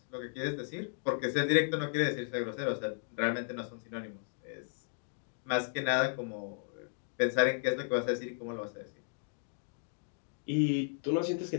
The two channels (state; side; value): silent; right; digital silence